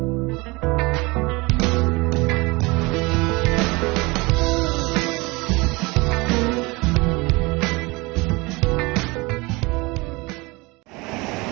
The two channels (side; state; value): left; quieter; 24.5 dB